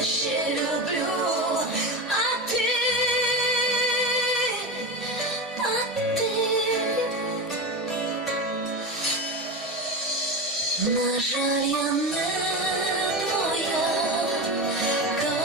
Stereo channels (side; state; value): both; normal; correlation 0.21